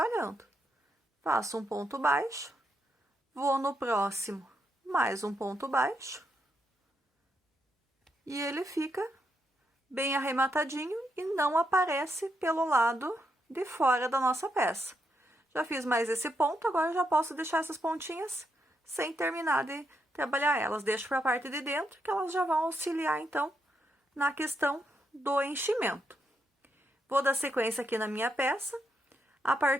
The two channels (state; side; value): normal; both; correlation 0.80